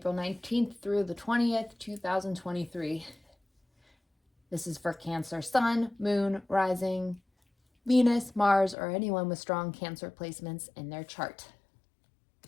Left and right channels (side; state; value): right; drops out; at 8.8 s